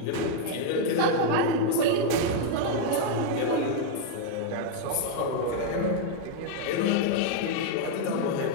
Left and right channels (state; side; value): different; both; correlation 0.00